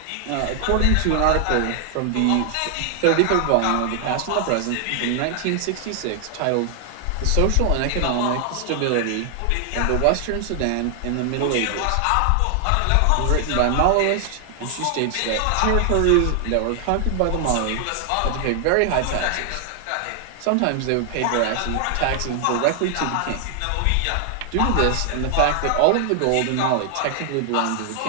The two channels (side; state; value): both; different; correlation 0.00